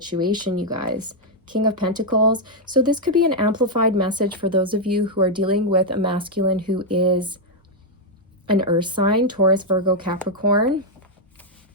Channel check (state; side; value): normal; both; correlation -0.01